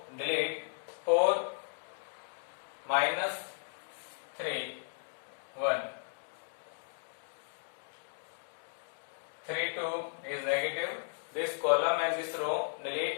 delete. 4 minus 3 1. 32 is negative. This column and this row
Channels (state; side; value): silent; right; digital silence